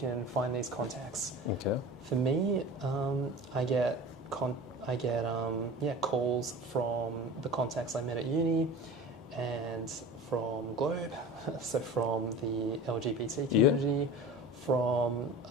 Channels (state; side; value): normal; both; correlation 0.36